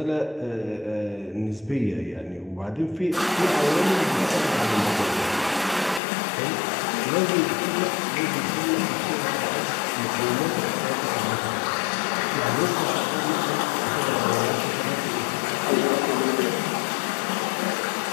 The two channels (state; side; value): drops out; right; at 6.0 s